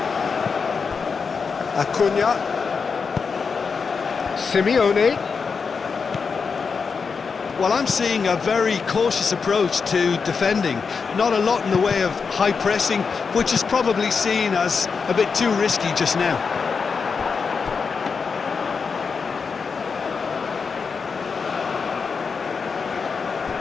Acuna. Simeone. Well, I'm seeing a very cautious approach to defending. Not a lot in the way of high pressing, which is probably seen as a bit too risky just now.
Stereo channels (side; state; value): right; quieter; 5.4 dB